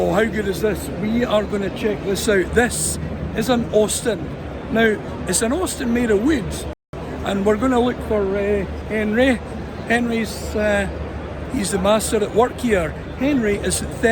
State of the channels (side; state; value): both; identical; correlation 1.00